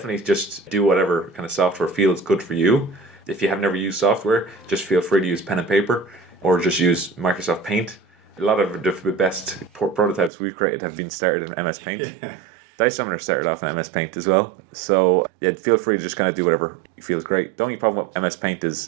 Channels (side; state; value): left; drops out; at 10.3 s